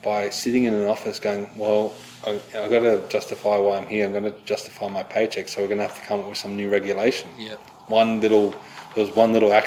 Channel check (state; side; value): identical; both; correlation 1.00